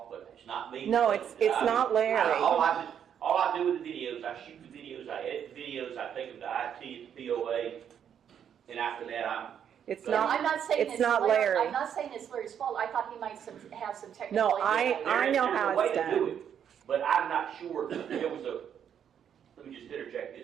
but it's not me. No, it's not Larry. All I do with the videos, I shoot the videos, I edit the videos, I take them to IT at the POA, and after that I'm... I'm not saying it's not Larry. I'm not saying it's Larry's fault. I thought he might have some technical... No, I know how it's done. Do it, but I'm not sure. There was let me just interject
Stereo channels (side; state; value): left; quieter; 8.7 dB